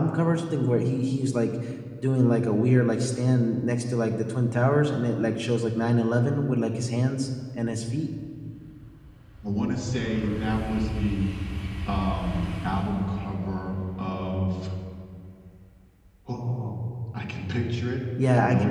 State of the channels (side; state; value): both; identical; correlation 1.00